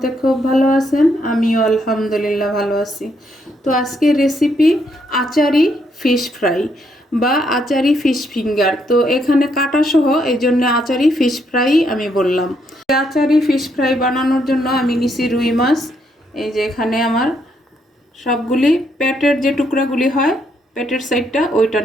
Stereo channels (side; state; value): both; normal; correlation 0.75